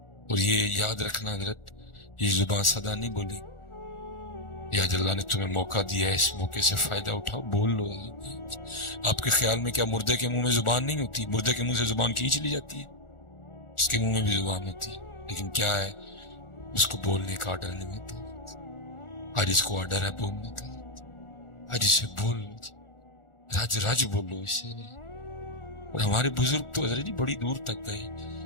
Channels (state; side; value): late; right; 1.4 ms